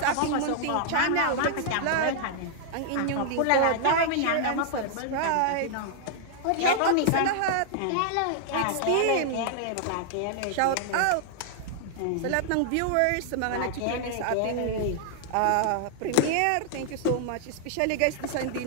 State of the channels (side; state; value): both; different; correlation -0.01